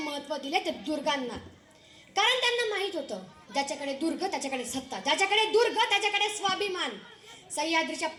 दिले ते दुर्गांना, कारण त्यांना माहित होतं ज्याच्याकडे दुर्ग त्याच्याकडे सत्ता, ज्याच्याकडे दुर्ग त्याच्याकडे स्वाभिमान। सह्याद्रीच्या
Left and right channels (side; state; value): both; identical; correlation 1.00